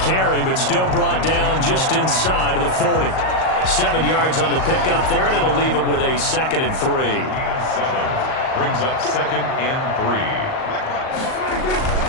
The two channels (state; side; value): late; right; 38 ms